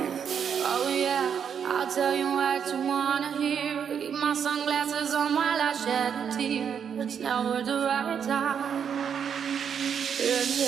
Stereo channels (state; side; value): quieter; left; 7.6 dB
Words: Oh yeah, I'll tell you what you wanna hear. Keep my sunglasses on while I shed a tear. It's never the right time. Yeah,